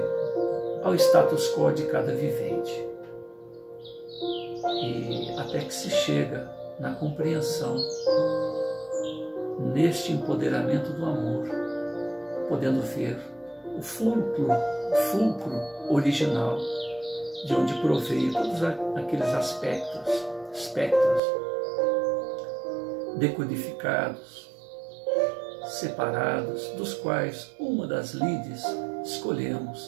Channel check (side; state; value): left; drops out; at 21.2 s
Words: ao status quo de cada vivente. E até que se chega na compreensão, neste empoderamento do amor, podendo ver o fulcro original de onde proveio todos aqueles espectros decodificados, separados, dos quais uma das lides